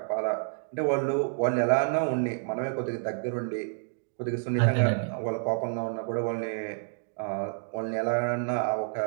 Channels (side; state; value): left; silent; digital silence